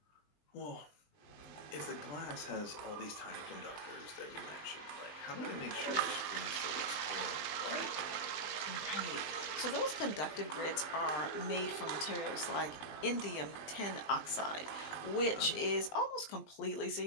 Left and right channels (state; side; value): late; right; 20 ms